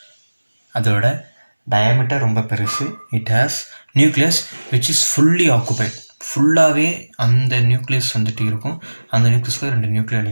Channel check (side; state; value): both; inverted; correlation -1.00